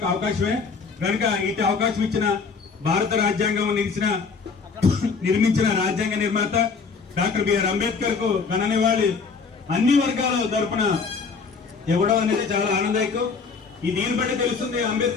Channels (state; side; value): quieter; right; 5.1 dB